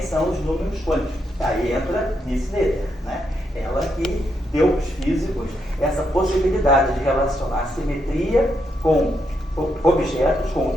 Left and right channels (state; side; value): normal; both; correlation 0.80